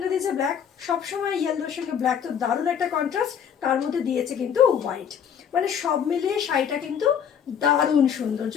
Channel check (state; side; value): quieter; right; 8.1 dB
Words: দিয়েছে ব্ল্যাক, সবসময় ইয়েলোর সঙ্গে ব্ল্যাক তো দারুণ একটা কন্ট্রাস্ট, তার মধ্যে দিয়েছে কিন্তু হোয়াইট, মানে সব মিলিয়ে শাড়িটা কিন্তু দারুণ সুন্দর।